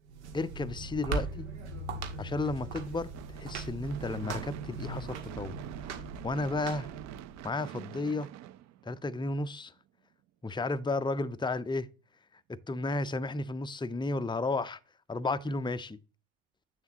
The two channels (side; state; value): both; normal; correlation 0.59